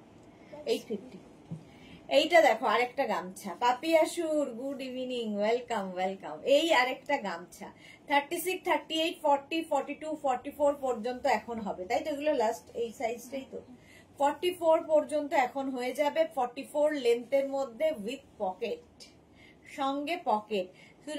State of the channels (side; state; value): both; identical; correlation 1.00